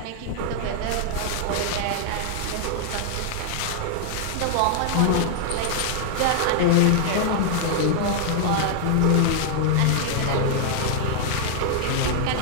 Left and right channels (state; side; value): different; both; correlation -0.01